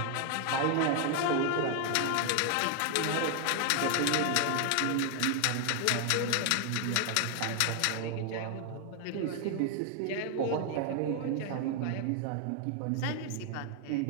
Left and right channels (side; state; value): both; different; correlation 0.00